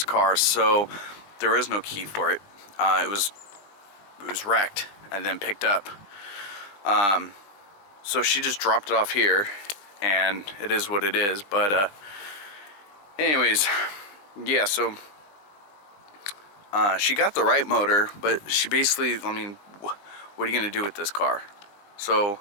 car, so there is no key for it. It was wrecked and then picked up. So she just dropped it off here, and it is what it is. But anyways, yeah, so she got the right motor, but she basically, I mean, what are you gonna do with this car? So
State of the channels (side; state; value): right; late; 20 ms